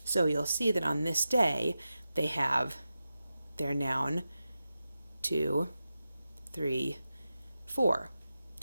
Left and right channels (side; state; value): both; inverted; correlation -0.92